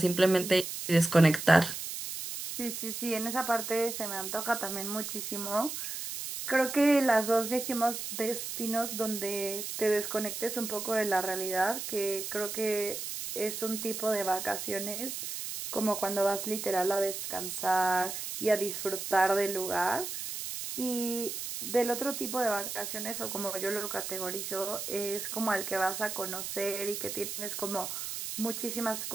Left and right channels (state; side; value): noise; right; hiss, 6 dB below the sound